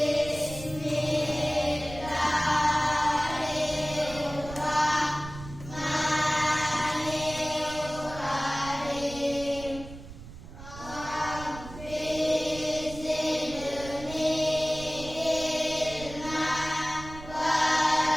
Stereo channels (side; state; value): right; noise; rumble, 14 dB below the sound